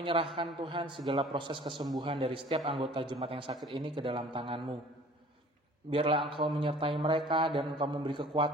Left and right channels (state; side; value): normal; both; correlation 0.49